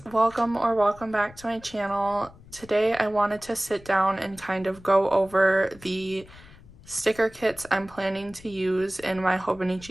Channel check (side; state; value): left; noise; rumble, 22 dB below the sound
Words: welcome back to my channel. Today I wanted to sit down and kind of go over the sticker kits I'm planning to use in my